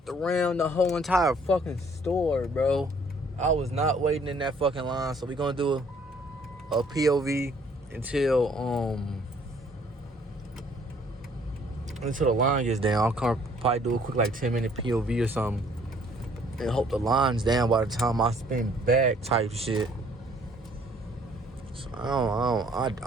around the whole entire fucking store, bro. I was not waiting in that fucking line, so we gonna do a POV until the line gets down. I'll probably do a quick like 10-minute POV or something, and hope the line's down by the time I spin back type shit. So I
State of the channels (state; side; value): normal; both; correlation 0.60